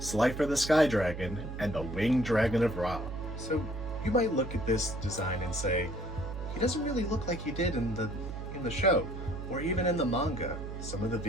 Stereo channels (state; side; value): noise; right; hum, 8 dB below the sound